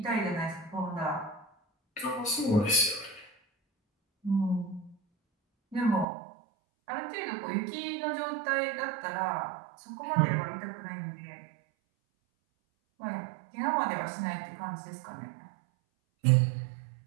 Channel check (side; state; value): left; drops out; at 6.1 s